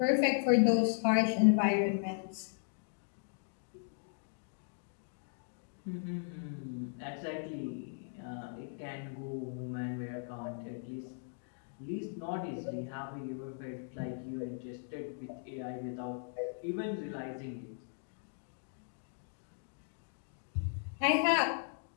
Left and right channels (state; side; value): silent; right; digital silence